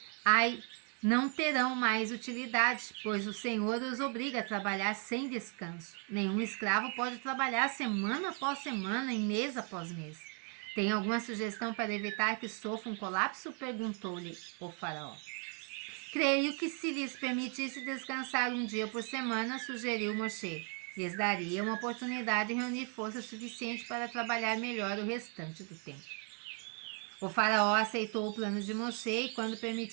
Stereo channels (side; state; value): left; quieter; 39.6 dB